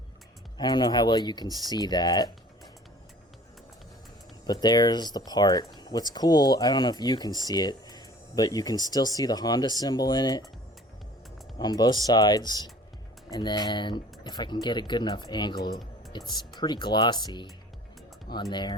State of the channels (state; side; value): normal; both; correlation 0.48